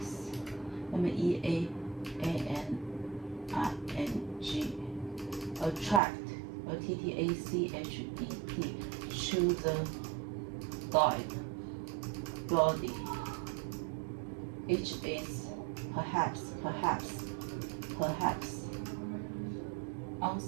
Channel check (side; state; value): left; drops out; at 6.0 s